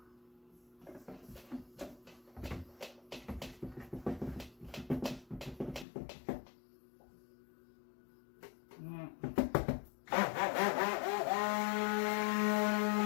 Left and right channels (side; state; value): right; drops out; at 5.9 s